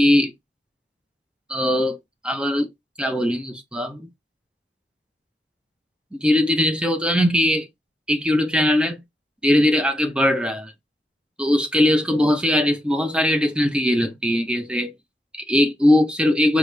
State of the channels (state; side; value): normal; both; correlation 0.83